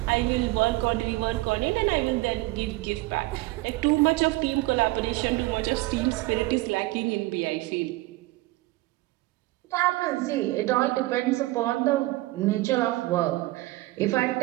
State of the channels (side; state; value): left; quieter; 19.8 dB